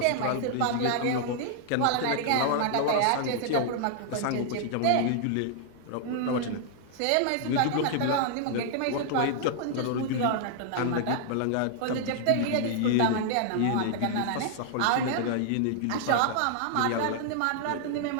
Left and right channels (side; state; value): both; different; correlation -0.01